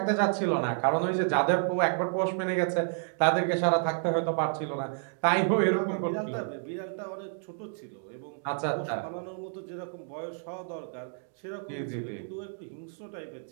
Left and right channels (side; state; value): left; silent; digital silence